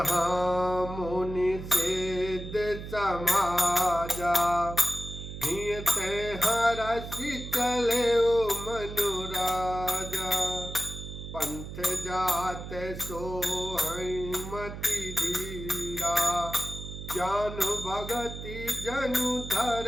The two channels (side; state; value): right; noise; hum, 9 dB below the sound